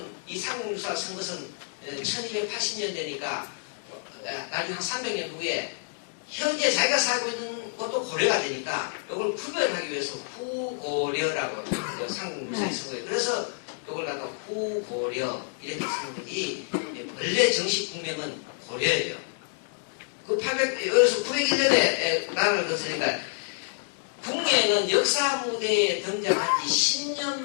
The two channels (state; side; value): silent; right; digital silence